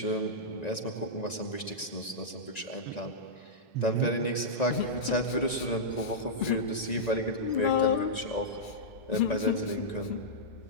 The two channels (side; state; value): right; late; 1.9 ms